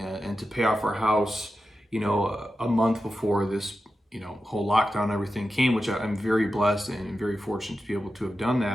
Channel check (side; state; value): both; normal; correlation 0.91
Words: and to pay off our house a month before this whole lockdown and everything came, which I'm very blessed and very fortunate to be able to have done